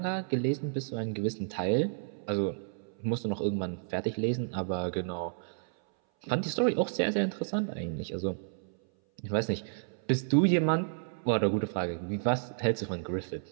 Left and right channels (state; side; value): silent; left; 57 dB below the other